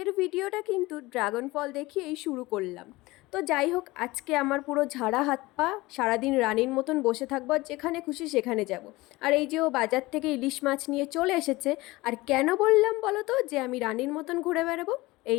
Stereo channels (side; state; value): right; quieter; 20.6 dB